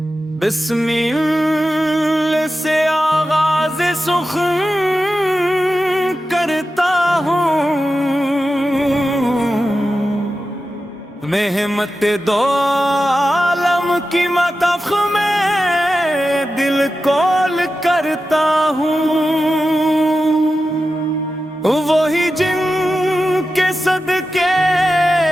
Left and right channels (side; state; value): both; normal; correlation 0.92